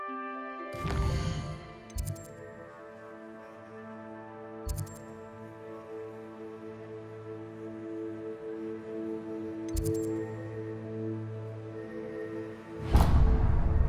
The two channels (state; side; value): identical; both; correlation 1.00